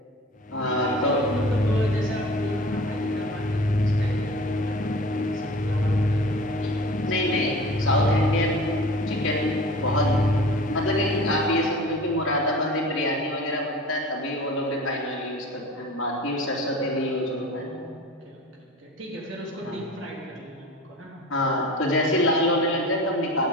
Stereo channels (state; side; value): normal; both; correlation 0.39